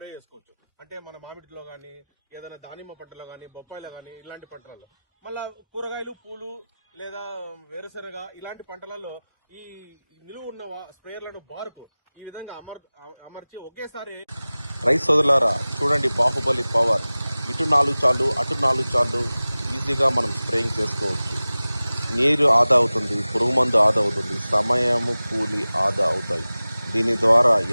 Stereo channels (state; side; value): inverted; both; correlation -0.98